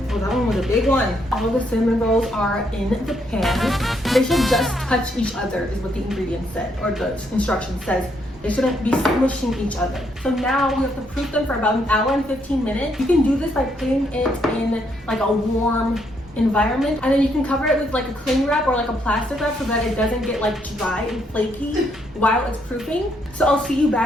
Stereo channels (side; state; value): both; normal; correlation 0.74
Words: one was a big one. All the cinnamon rolls are in the pan. They should just touch each other is what the ingredient said, or the instruction says. They shouldn't be smushing each other. So now we have to proof them for about 1 hour and 15 minutes. You can do this by putting it in like a warm environment, and then you can cover it with like a cling wrap or like a plastic wrap so that it doesn't get like dry and flaky while it's proofing. So I'll see you